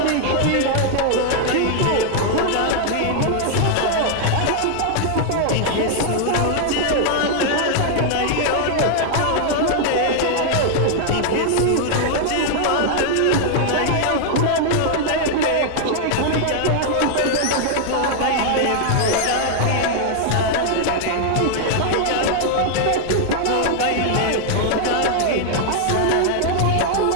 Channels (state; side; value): different; both; correlation 0.00